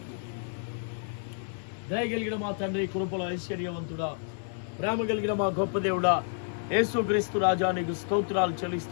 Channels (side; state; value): right; silent; 58 dB below the other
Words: దయ కలిగిన మా తండ్రి, కృపల ఐశ్వర్యవంతుడా, ప్రేమ కలిగిన మా గొప్ప దేవుడా, యేసుక్రీస్తు రాజా, నీకు స్తోత్రాలు